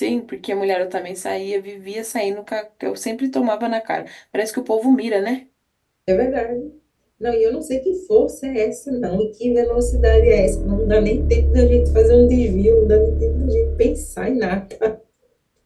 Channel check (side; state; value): both; identical; correlation 1.00